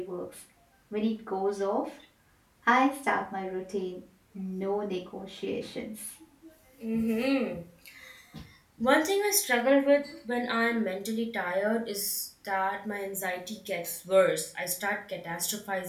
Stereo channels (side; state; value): both; identical; correlation 1.00